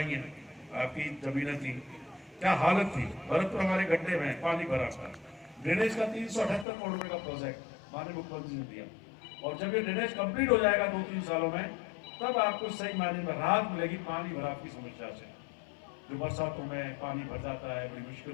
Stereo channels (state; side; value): drops out; right; at 6.7 s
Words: हैं, आपकी जमीनें थी, क्या हालत थी। भरतपुर हमारे गड्ढे में पानी भरा था। ड्रेनेज का 378 करोड़ रुपए का प्रोजेक्ट माननीय मुख्यमंत्री ने दिया, और जब ये ड्रेनेज कंप्लीट हो जाएगा 2-3 सालों में, तब आपको सही मायने में राहत मिलेगी पानी भराव की समस्या से। जो बरसातों में पानी भर जाता है, बड़ी मुश्किल